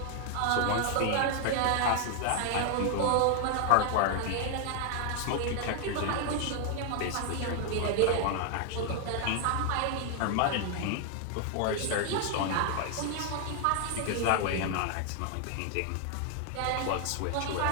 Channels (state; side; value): different; both; correlation 0.00